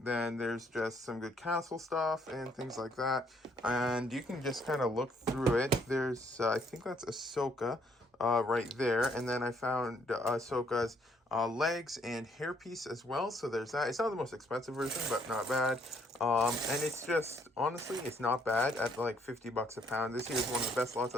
there's just some good castle stuff and things like that. And you can just kind of look through it. There's, I think that's Ahsoka. right there. And then I found Ahsoka's legs and hairpiece as well. So there's that. It's not the most expensive version, but not bad. And it's just, honestly, it's not bad at like 50 bucks a pound. This here is one of the best lots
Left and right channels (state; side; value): normal; both; correlation 0.67